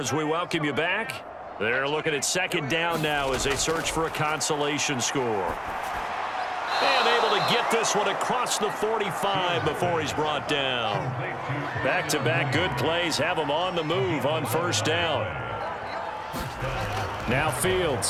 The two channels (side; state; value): both; identical; correlation 1.00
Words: we welcome you back. They're looking at 2nd down now as they search for a consolation score. And able to get this one across the 45 before he's brought down. Back-to-back good plays have him on the move on 1st down. Now